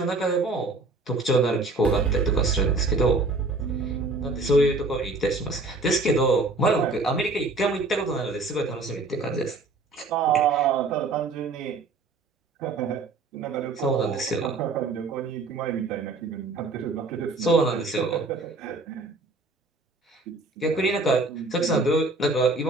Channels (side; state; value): left; quieter; 3.4 dB